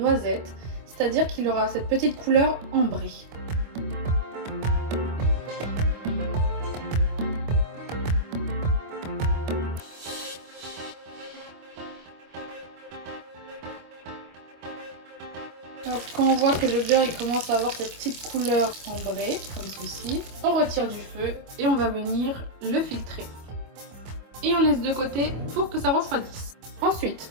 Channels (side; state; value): left; late; 25 ms